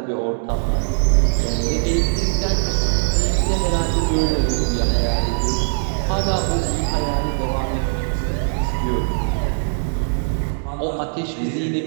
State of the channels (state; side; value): silent; left; digital silence